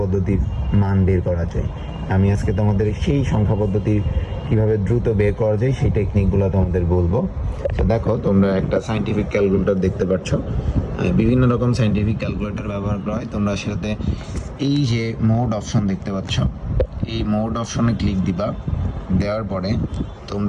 মান বের করা যায়। আমি আজকে তোমাদের সেই সংখ্যা পদ্ধতির কিভাবে দ্রুত বের করা যায় সেই টেকনিকগুলো তোমাদের বলবো। তো দেখো, তোমরা একটা সায়েন্টিফিক ক্যালকুলেটর দেখতে পাচ্ছ। বিভিন্ন রকম সায়েন্টিফিক ক্যালকুলেটর ব্যবহার করা হয়। তোমরা সেটাতে এই যে মোড অপশন দেখতে পাচ্ছ, এই মোড অপশনে ক্লিক দিবা। দেওয়ার পরে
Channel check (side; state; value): both; identical; correlation 1.00